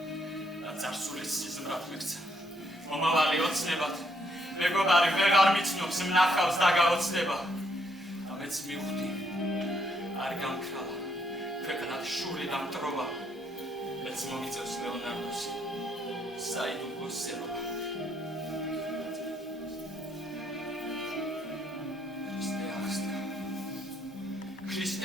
და წარსულის სიზმრად მიქცა. მომავალი ოცნებად, მეგობარი ვეღარ მიცნობს მნახავს და გაოცდება. და მეც მივხვდი, არ გამქრალა ქვეყნად შური და მტრობა. მეც მომიწევს ლეონარდოს საიდუმლოსება.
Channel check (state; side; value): normal; both; correlation 0.72